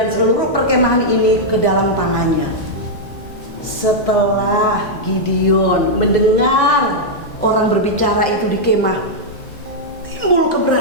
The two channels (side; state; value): right; late; 2.0 ms